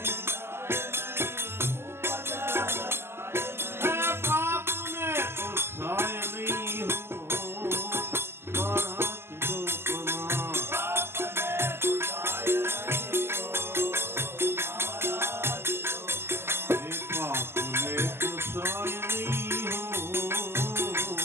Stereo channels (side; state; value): left; late; 0.12 ms